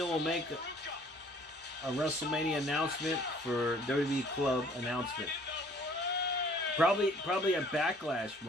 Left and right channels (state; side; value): normal; both; correlation 0.56